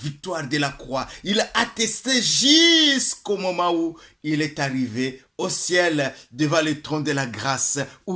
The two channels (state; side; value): identical; both; correlation 1.00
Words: victoire de la croix. Il attestait jusqu'au moment où il est arrivé au ciel devant le trône de la grâce,